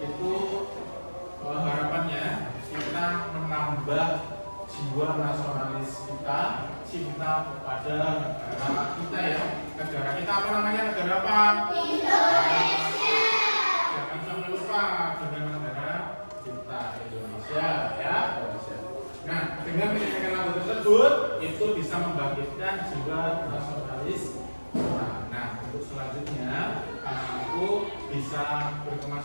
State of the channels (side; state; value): both; inverted; correlation -1.00